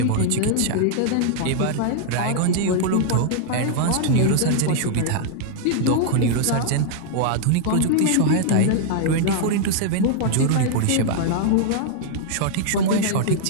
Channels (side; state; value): both; different; correlation -0.01